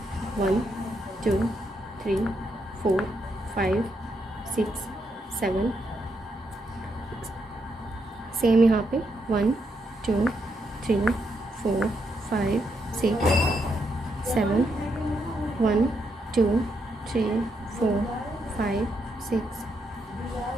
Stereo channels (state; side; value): normal; both; correlation 0.80